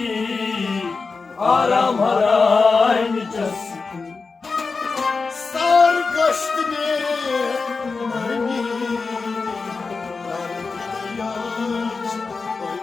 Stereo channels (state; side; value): quieter; right; 4.4 dB